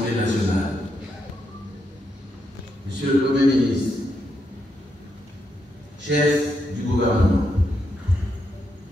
nationale, Monsieur le Premier ministre, chef du gouvernement,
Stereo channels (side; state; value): both; normal; correlation 0.81